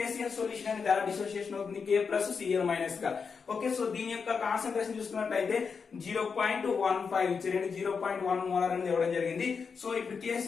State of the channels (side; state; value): right; quieter; 5.6 dB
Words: సొల్యూషన్ అనేది ఎలా డిసోసియేషన్ అవుతుంది, K ప్లస్ Cl మైనస్ గా. ఓకే, సో దీని యొక్క కాన్సంట్రేషన్ చూసుకున్నట్లయితే 0.15 ఇచ్చారండి, 0.1 మోలార్ అనేది ఇవ్వడం జరిగింది. సో ఇప్పుడు